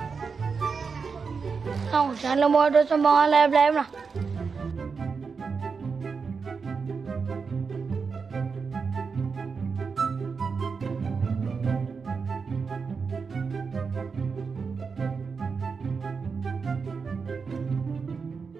Không, jangan lah mau ada sumbangan lain-lain lah.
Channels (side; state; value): left; quieter; 5.3 dB